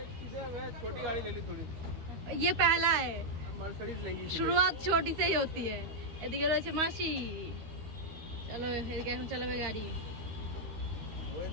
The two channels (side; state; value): left; late; 13 ms